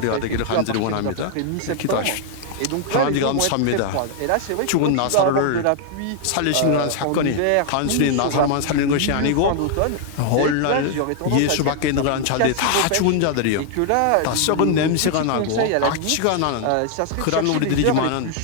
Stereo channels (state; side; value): different; both; correlation 0.00